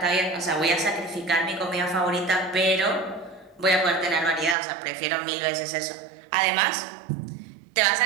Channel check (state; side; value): drops out; left; at 4.5 s